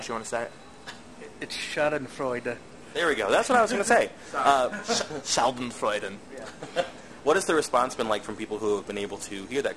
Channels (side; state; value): both; identical; correlation 1.00